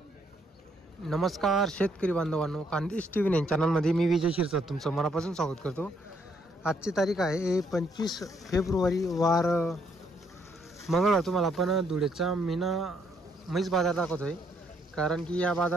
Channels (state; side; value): normal; both; correlation 0.71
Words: नमस्कार शेतकरी बांधवांनो, खानदेश टीव्ही 9 चॅनलमध्ये मी विजय शिरसाट तुमचं मनापासून स्वागत करतो। आजची तारीख आहे 25 फेब्रुवारी वार मंगळवार। तुम्हाला आपण धुळेचा मीना म्हैस बाजार दाखवतोय, कारण की या